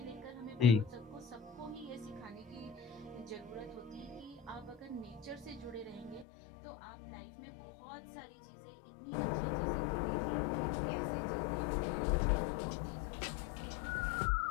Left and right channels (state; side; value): drops out; right; at 6.2 s